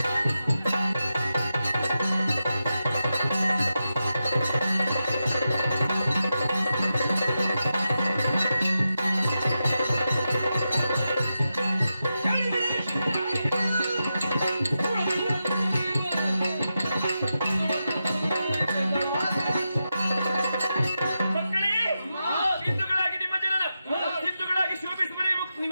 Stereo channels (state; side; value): inverted; both; correlation -0.89